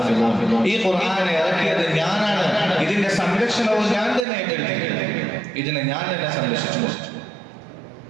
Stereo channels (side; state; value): left; drops out; at 4.2 s